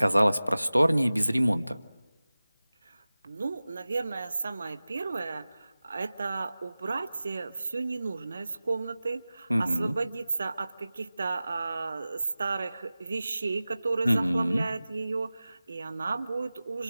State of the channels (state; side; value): inverted; both; correlation -0.97